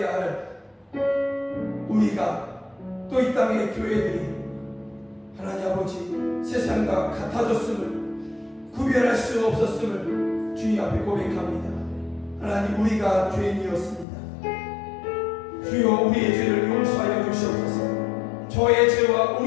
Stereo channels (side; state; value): right; drops out; at 14.1 s